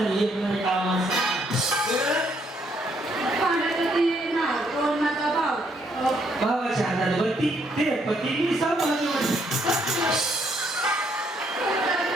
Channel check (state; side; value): normal; both; correlation 0.71